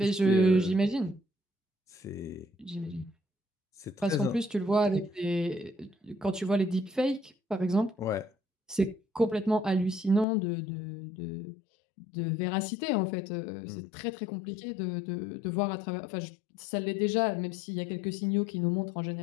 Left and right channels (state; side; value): drops out; right; at 10.2 s